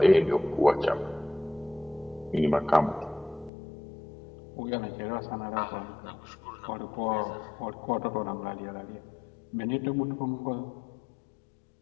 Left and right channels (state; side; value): drops out; right; at 3.5 s